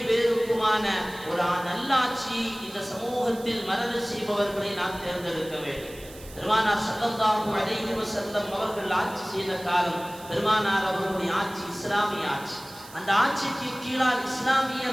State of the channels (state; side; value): noise; right; hiss, 19 dB below the sound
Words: பேருக்குமான ஒரு நல்லாட்சி இந்த சமூகத்தில் மரண செய்பவர்களை நாம் தேர்ந்தெடுக்க வேண்டும். பெருமானார் ஸல்லல்லாஹு அலைஹி வஸல்லம் அவர்கள் ஆட்சி செய்த காலம் பெருமானார் அவர்களுடைய ஆட்சி இஸ்லாமிய ஆட்சி. அந்த ஆட்சிக்கு கீழால்